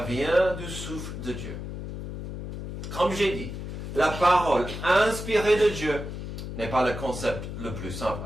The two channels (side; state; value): left; noise; hum, 7 dB below the sound